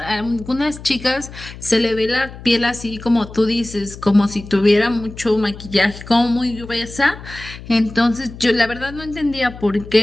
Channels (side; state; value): left; noise; hum, 15 dB below the sound